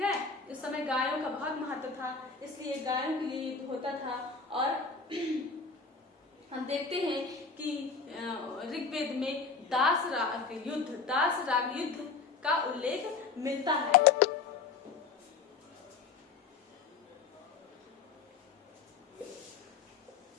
है, उस समय गायों का बहुत महत्व था, इसलिए गायों के लिए युद्ध होता था। और हम देखते हैं कि ऋग्वेद में दास राग युद्ध का उल्लेख मिलता है।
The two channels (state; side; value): quieter; right; 4.9 dB